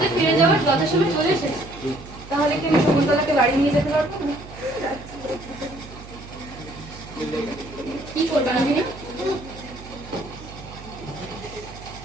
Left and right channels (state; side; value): noise; right; hum, 16 dB below the sound